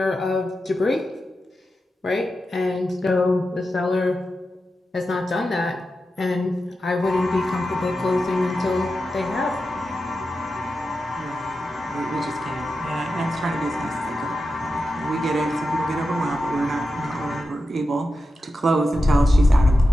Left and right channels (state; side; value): normal; both; correlation 0.90